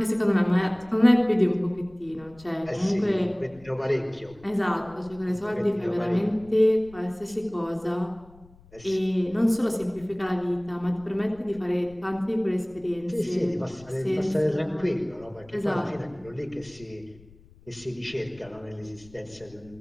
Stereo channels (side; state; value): left; noise; rumble, 24 dB below the sound